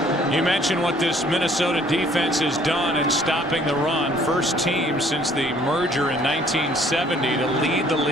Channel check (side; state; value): both; normal; correlation 0.59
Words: You mentioned what this Minnesota defense has done in stopping the run. First team since the merger in 1970 to lead the